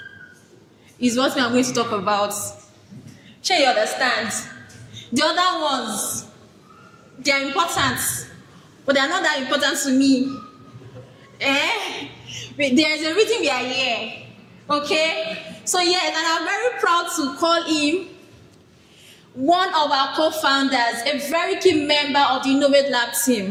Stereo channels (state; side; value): identical; both; correlation 1.00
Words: is what we are going to talk about. Sure, you understand? The other ones, they are important, but they are not that important to me. There is a reason we are here. Okay? So yes, and I'm very proud to call him one of our co-founders, a very key member of the Ennovate Lab